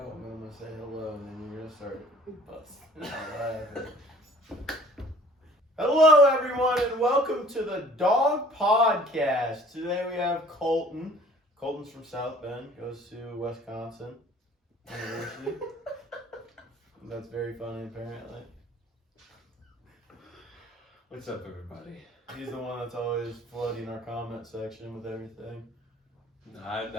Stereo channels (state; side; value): normal; both; correlation 0.52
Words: I'm gonna say hello, and then you're gonna start busting out laughing. Hello, everyone, and welcome to the Dawg Podcast. Today we have Colten. Colten's from South Bend, goes to Wisconsin University. That's very funny, apparently. What's up, everybody? He's the one that's always flooding our comment section with everything. No,